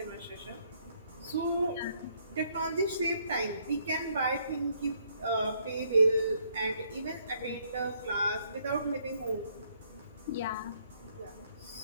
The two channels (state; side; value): inverted; both; correlation -0.69